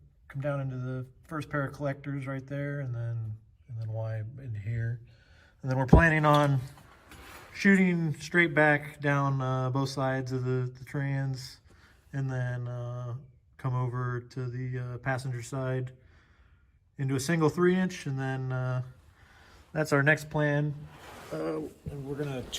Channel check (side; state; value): both; identical; correlation 1.00